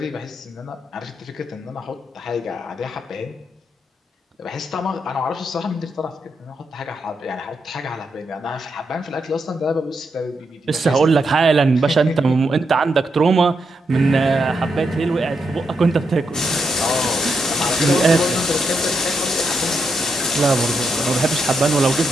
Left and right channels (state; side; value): normal; both; correlation 0.82